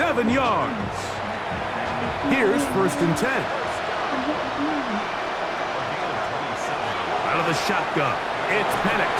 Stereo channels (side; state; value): both; identical; correlation 1.00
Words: yards. Here's 1st and 10. Out of the shotgun, it's Penix.